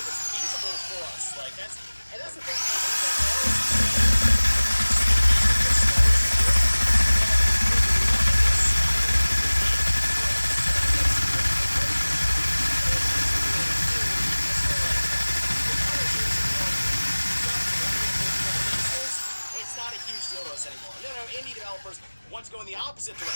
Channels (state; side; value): inverted; both; correlation -1.00